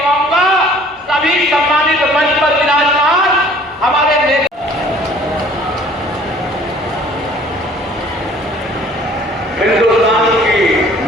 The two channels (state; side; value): normal; both; correlation 0.53